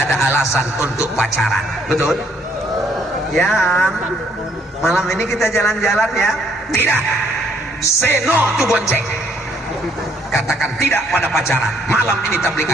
ada alasan untuk pacaran. Betul? Ya, malam ini kita jalan-jalan ya. Tidak, say no to bonceng. Katakan tidak pada pacaran. Malam ini tabligh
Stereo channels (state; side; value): normal; both; correlation 0.67